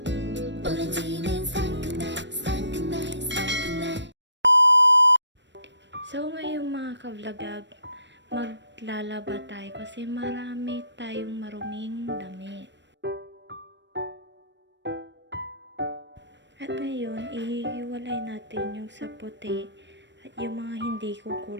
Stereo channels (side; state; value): left; late; 0.53 ms